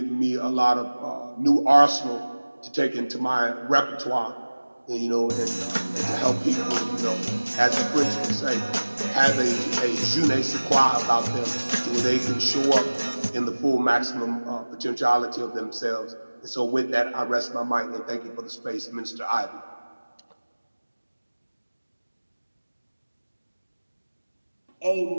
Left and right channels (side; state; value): both; inverted; correlation -1.00